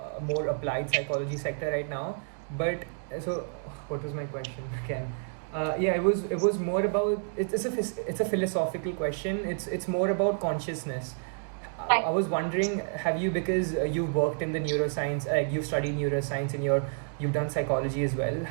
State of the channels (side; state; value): left; silent; 58 dB below the other